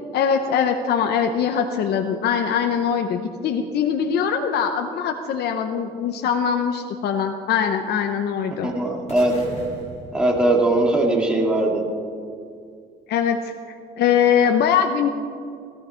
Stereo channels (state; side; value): quieter; right; 4.0 dB